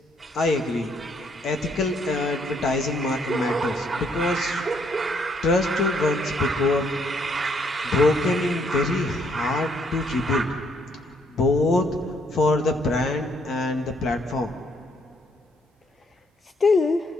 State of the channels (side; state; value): both; normal; correlation 0.70